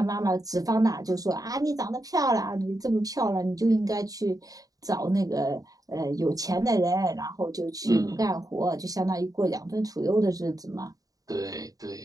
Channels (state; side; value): late; left; 0.18 ms